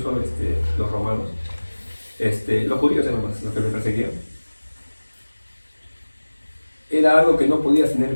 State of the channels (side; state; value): both; inverted; correlation -1.00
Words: los romanos. Los judíos eran más los que lo perseguían. Era algo que no podías